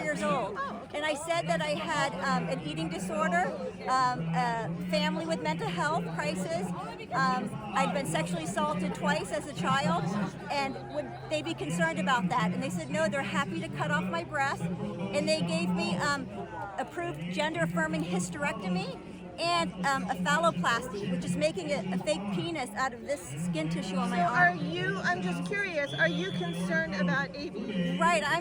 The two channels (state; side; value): identical; both; correlation 1.00